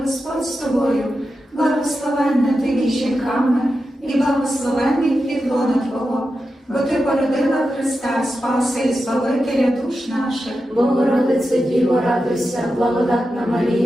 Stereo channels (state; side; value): normal; both; correlation 0.90